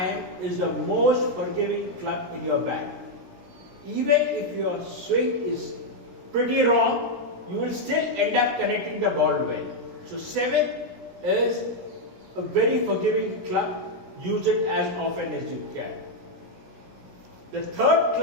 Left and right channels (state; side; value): late; left; 17 ms